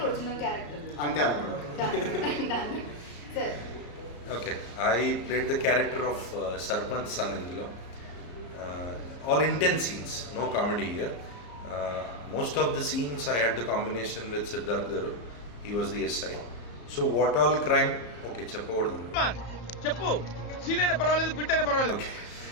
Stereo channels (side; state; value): right; late; 34 ms